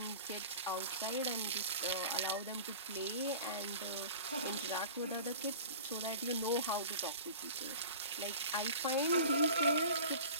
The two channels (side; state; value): both; inverted; correlation -0.39